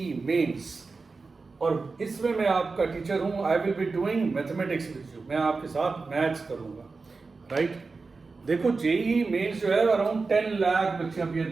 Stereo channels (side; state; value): left; quieter; 4.2 dB